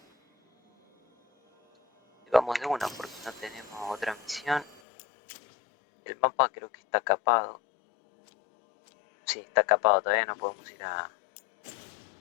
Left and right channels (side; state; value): right; drops out; at 4.8 s